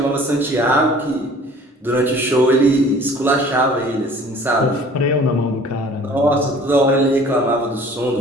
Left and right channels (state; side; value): normal; both; correlation 0.49